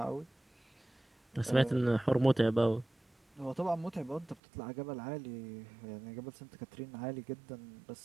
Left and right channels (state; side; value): drops out; left; at 4.4 s